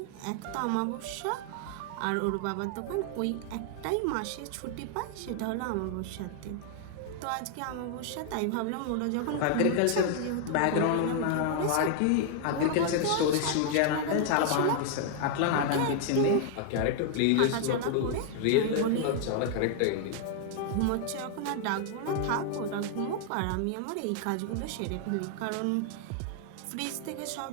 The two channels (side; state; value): both; different; correlation 0.00